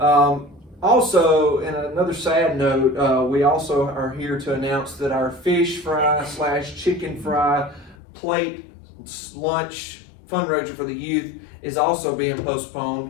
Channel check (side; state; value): right; drops out; at 8.0 s